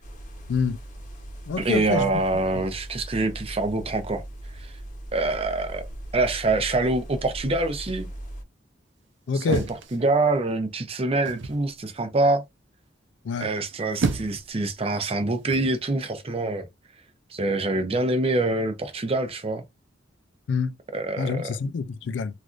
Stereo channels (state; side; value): normal; both; correlation 0.43